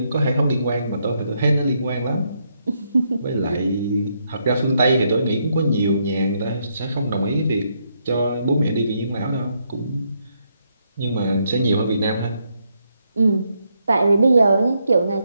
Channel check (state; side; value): inverted; both; correlation -0.77